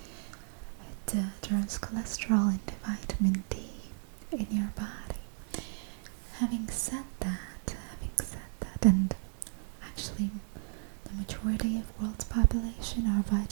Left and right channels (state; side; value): silent; left; 55 dB below the other